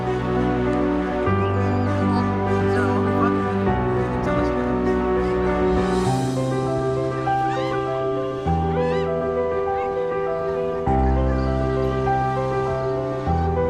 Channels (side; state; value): both; identical; correlation 1.00